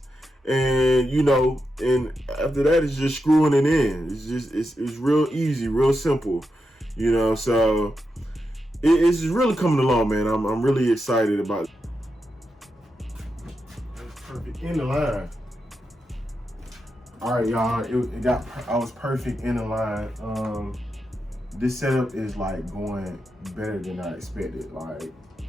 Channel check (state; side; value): normal; both; correlation 0.87